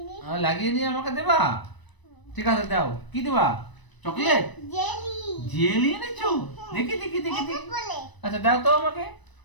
লাগিয়ে নিয়ে আমাকে দেবা? ঠিক আছে দাও। কি দেবা? চকলেট? জেলি এনেছো? দেখি দেখি দেখি দেখি। আচ্ছা দাও তো আমাকে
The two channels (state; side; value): late; right; 1.0 ms